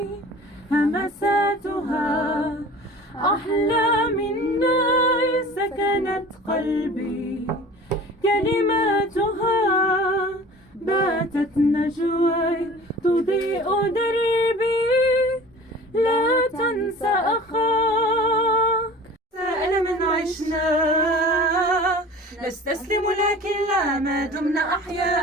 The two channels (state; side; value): normal; both; correlation 0.42